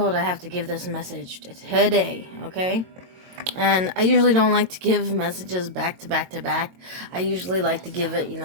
I have to give this message today, okay? And I usually don't like to give messages back to back to back. I usually like to give it,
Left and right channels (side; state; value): left; late; 22 ms